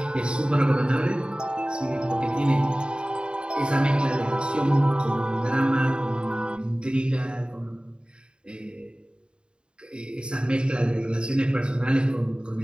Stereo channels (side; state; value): left; late; 0.052 ms